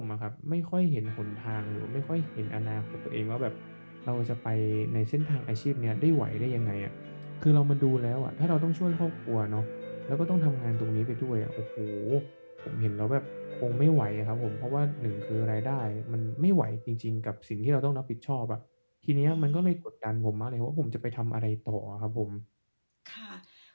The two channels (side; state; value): both; inverted; correlation -1.00